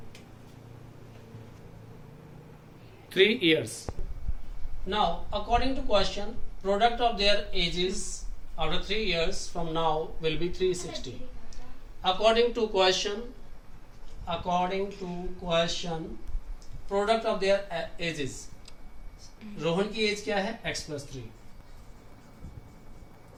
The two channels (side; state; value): both; identical; correlation 1.00